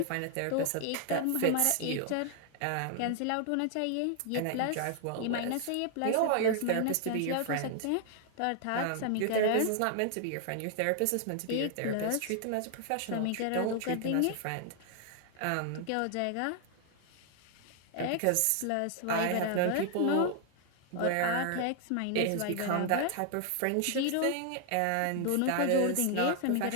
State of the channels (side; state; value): both; different; correlation 0.00